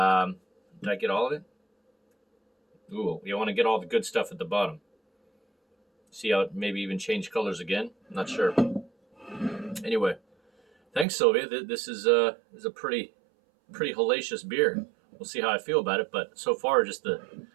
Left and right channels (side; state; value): left; drops out; at 11.1 s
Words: get all of it? Ooh, you want to get all the good stuff at the bottom. See how it maybe even change colors again? I'm not sure. Anyway, thanks, Sylvia. This is a pretty hellacious beer. We'll see how I feel about it, but so far, just the